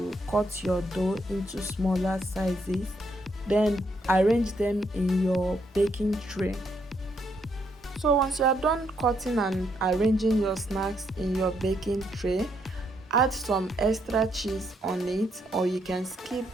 cut your dough into smaller sizes. Then arrange them in your baking tray. So once you are done cutting and arranging your snacks in your baking tray, add some extra cheese on it, or you can skip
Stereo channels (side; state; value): both; normal; correlation 0.75